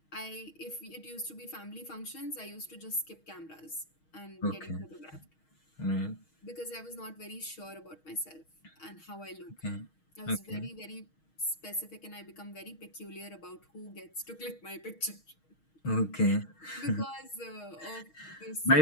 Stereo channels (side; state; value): right; late; 6.4 ms